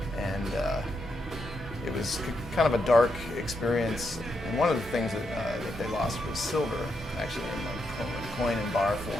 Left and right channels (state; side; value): normal; both; correlation 0.82